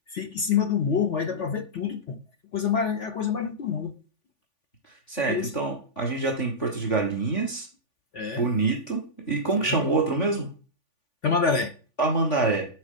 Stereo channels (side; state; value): right; late; 3.5 ms